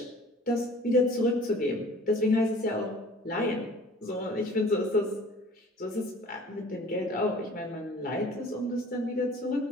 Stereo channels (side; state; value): both; normal; correlation 0.48